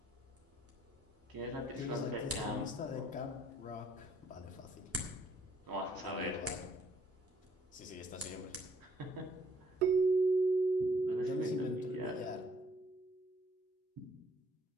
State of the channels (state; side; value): normal; both; correlation 0.64